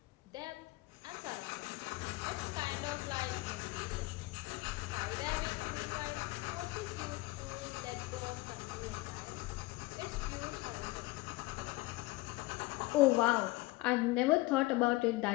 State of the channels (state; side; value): quieter; right; 20.9 dB